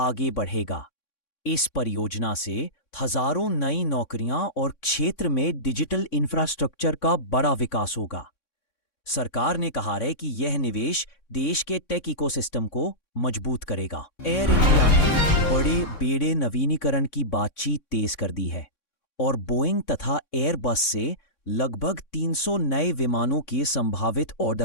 बढ़ेगा। इस परियोजना से हजारों नई नौकरियां और क्षेत्र में डिजिटल इंफ्रास्ट्रक्चर का बड़ा विकास होगा। सरकार ने कहा है कि यह निवेश देश के टेक इकोसिस्टम को मजबूत करेगा। एयर इंडिया ने बड़े बेड़े नवीनीकरण की बातचीत तेज कर दी है और बोइंग तथा एयरबस से लगभग 300 नए विमानों के संभावित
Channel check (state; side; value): late; right; 3.6 ms